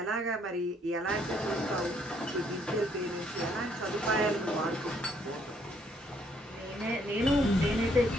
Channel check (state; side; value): normal; both; correlation 0.68